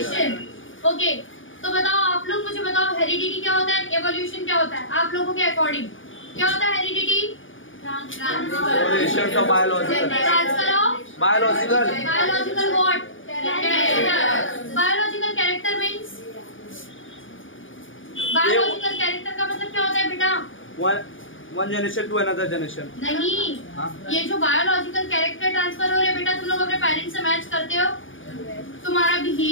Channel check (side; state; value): right; late; 0.57 ms